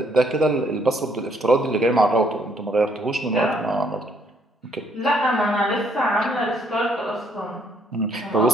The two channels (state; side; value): normal; both; correlation 0.68